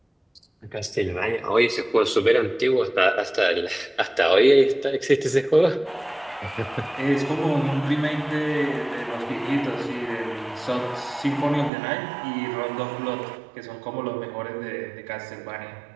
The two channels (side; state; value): left; drops out; at 11.7 s